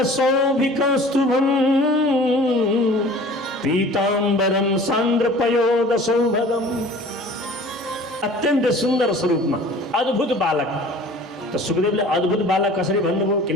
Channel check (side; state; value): both; normal; correlation 0.45